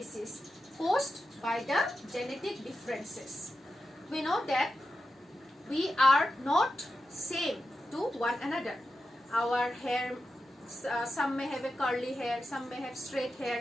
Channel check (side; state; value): both; normal; correlation 0.90